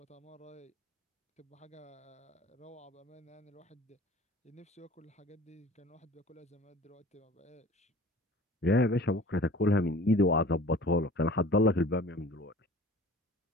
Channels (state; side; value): normal; both; correlation 0.44